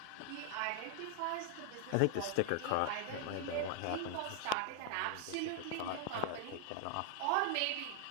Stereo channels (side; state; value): both; different; correlation 0.00